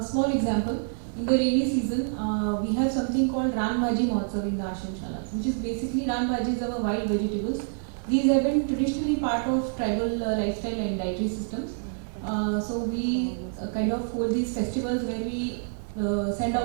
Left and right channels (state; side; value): silent; left; digital silence